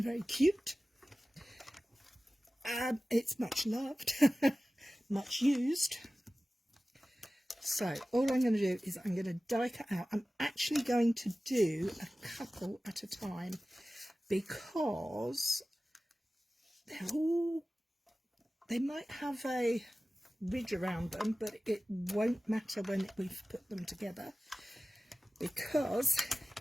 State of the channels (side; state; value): both; normal; correlation 0.96